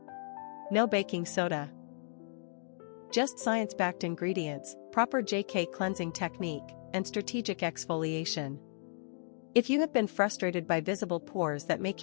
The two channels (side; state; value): right; silent; digital silence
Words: No baking soda. Just science-backed ingredients, proper JK cleansing technique, and strategic exfoliation. If you have been frustrated by visible pores that make